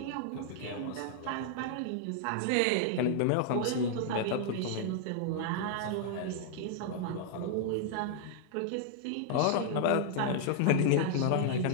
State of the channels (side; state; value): both; different; correlation -0.01